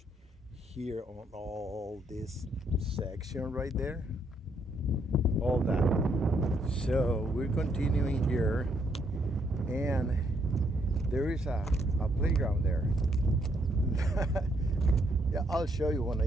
here on all this section right there. All that. So we're continuing here, and there is a playground there. Yeah, I'll show you when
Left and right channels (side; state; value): both; normal; correlation 0.72